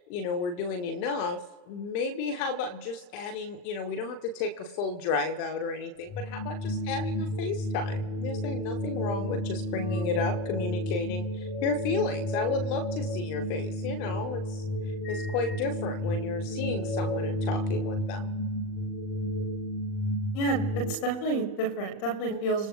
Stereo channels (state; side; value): late; right; 39 ms